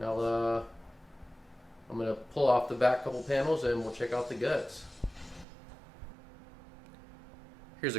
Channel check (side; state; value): left; drops out; at 5.5 s